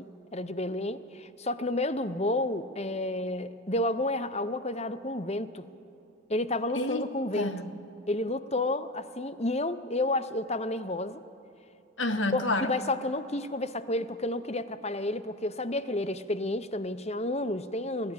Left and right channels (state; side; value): normal; both; correlation 0.27